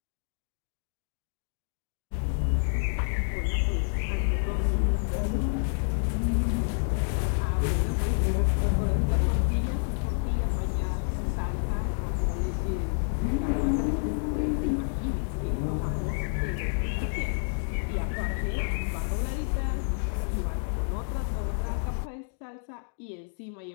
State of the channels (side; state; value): right; silent; digital silence